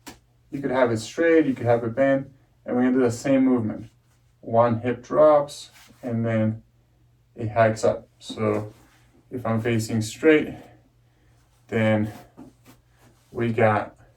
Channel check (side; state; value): both; identical; correlation 1.00